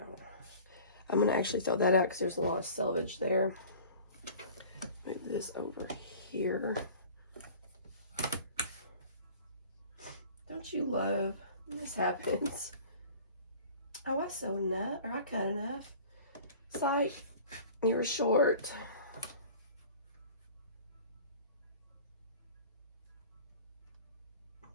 I'm going to actually throw that out because there's a lot of selvage there. Move this over here. Don't you love when this happens? Oh, I sewed enough, or I cut enough. It's like you were short.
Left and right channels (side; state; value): both; inverted; correlation -0.44